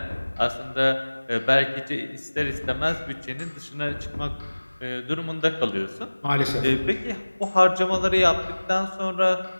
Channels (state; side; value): inverted; both; correlation -1.00